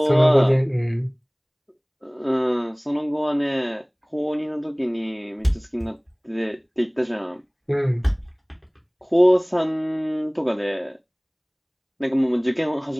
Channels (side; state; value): both; identical; correlation 1.00